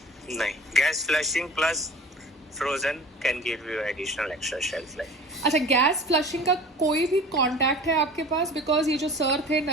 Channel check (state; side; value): normal; both; correlation 0.41